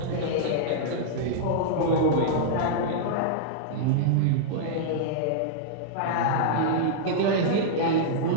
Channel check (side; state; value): both; different; correlation -0.02